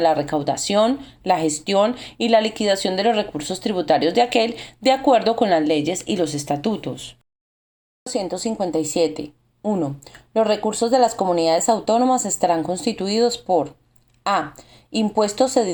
recaudación, la gestión y la liquidación de los recursos tributarios de aquel, de acuerdo con las leyes y los estatutos. 157. 1. Los recursos de las comunidades autónomas estarán constituidos por: a. Impuestos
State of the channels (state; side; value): identical; both; correlation 1.00